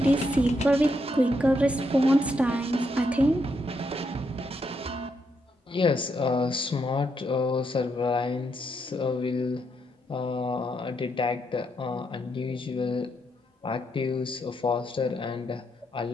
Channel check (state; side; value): normal; both; correlation 0.79